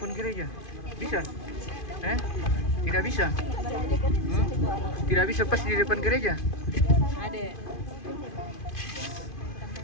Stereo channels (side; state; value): right; late; 2.5 ms